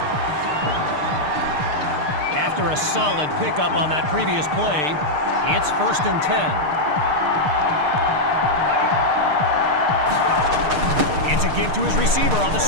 After a solid pickup on that previous play, it's 1st and 10. It's a give to his receiver on the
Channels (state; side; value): late; left; 6.6 ms